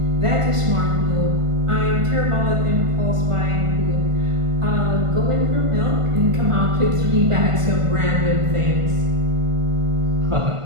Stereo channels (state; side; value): late; left; 1.5 ms